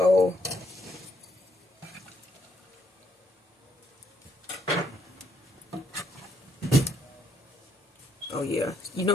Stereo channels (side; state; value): both; normal; correlation 0.73